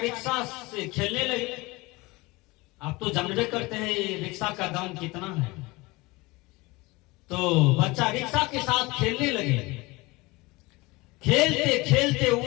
से खेलने लगे। आप तो जानबे करते हैं रिक्शा का दाम कितना है, तो बच्चा रिक्शा के साथ खेलने लगे। खेलते खेलते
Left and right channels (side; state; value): right; quieter; 23.0 dB